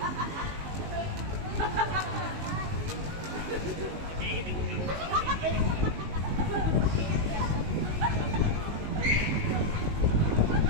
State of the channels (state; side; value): late; left; 19 ms